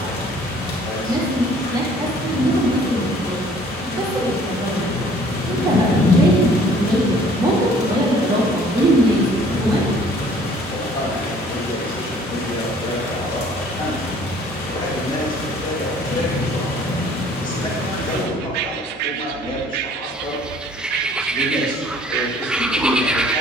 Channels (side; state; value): both; normal; correlation 0.55